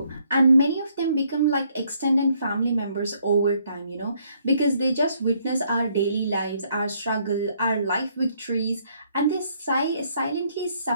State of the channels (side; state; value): both; inverted; correlation -0.69